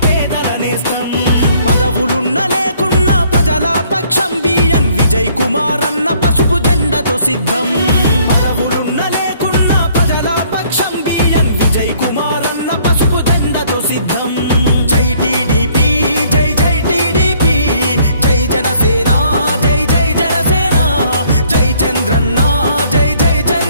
నేస్తం పదవులున్న లేకున్నా ప్రజల పక్షం బిఎన్ విజయ్ కుమార్ అన్న పసుపు జెండతో సిద్ధం పదవులున్న లేకున్నా ప్రజల పక్షం బిఎన్ విజయ్ కుమార్ అన్న పసుపు జెండతో సిద్ధం జై టీడీపీ జై జై టీడీపీ జై జనసేన జై జై జనసేన జై చంద్రన్న జై జై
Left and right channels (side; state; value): both; inverted; correlation -0.62